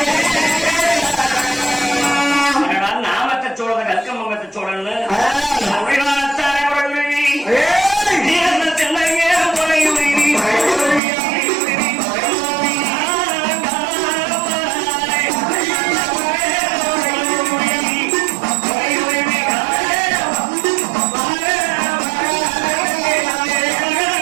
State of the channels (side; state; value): left; drops out; at 11.0 s